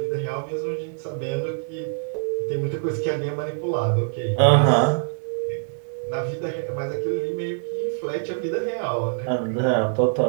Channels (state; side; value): silent; left; digital silence